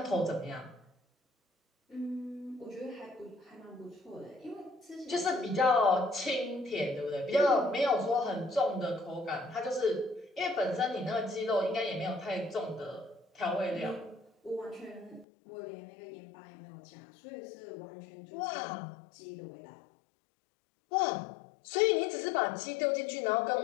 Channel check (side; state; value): right; drops out; at 15.2 s